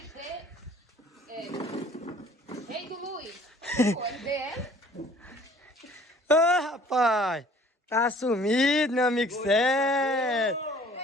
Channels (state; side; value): normal; both; correlation 0.53